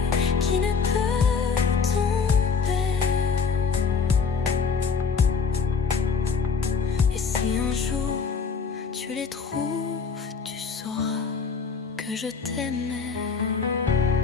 qui ne peut tomber. Et si un jour tu les trouves, tu sauras que je t'aimais.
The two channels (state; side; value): quieter; right; 5.5 dB